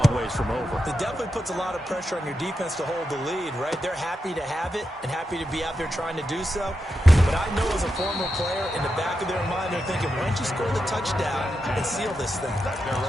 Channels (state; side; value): normal; both; correlation 0.87